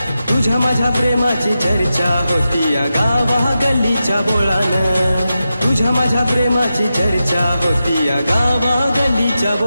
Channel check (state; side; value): inverted; both; correlation -0.90